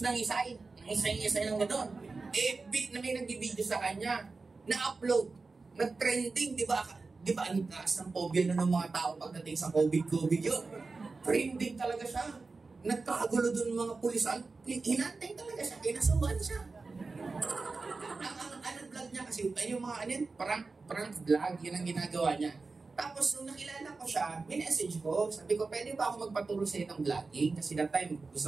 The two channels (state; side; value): quieter; left; 4.0 dB